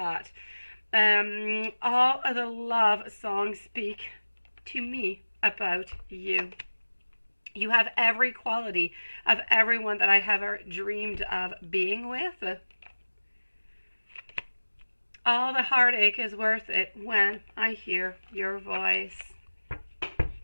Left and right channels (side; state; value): both; inverted; correlation -1.00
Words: All of the love songs speak to me about you. You have every quality of everyone that I have ever dreamed of being with. All the heartache is worth it when I hear your voice.